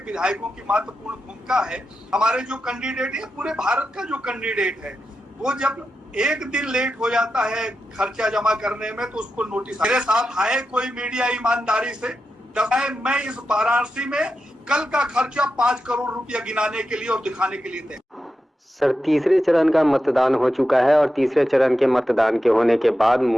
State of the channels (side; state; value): both; normal; correlation 0.89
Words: विधायकों की महत्वपूर्ण भूमिका है। हमारे जो कैंडिडेट है, पूरे भारत का जो कैंडिडेट है, वो जब एक दिन लेट हो जाता है खर्चा जमा करने में तो उसको नोटिस। मेरे साथ आए कोई मीडिया ईमानदारी से, मैं इस वाराणसी में कल का खर्चा 5 करोड़ रुपया गिनाने के लिए और दिखाने के लिए थे। सर तीसरे चरण का मतदान हो चुका है और तीसरे चरण के मतदान के होने के बाद